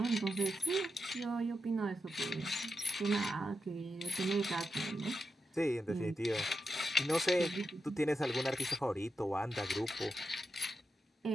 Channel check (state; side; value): normal; both; correlation 0.87